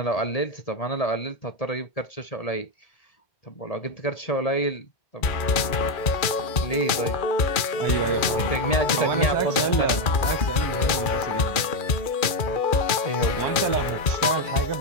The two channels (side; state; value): right; late; 2.3 ms